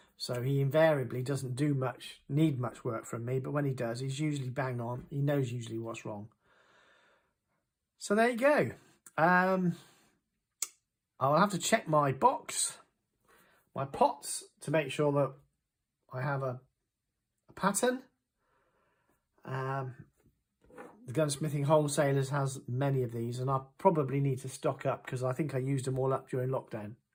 So he invariably doesn't need much work from me, but when he does, he's usually bang on. He knows usually what's wrong. So there you go. I'll have to check my box, my pots, to make sure that I have a pattern. The Gunsmithing Wholesalers has many of these, and I probably need to stock up because I think I used them all up during lockdown.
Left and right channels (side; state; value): both; identical; correlation 1.00